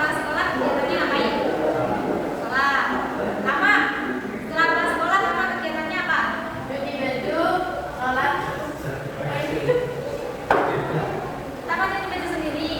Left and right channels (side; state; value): both; identical; correlation 1.00